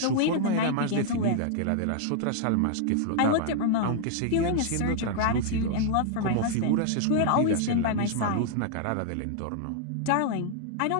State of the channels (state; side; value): different; both; correlation -0.01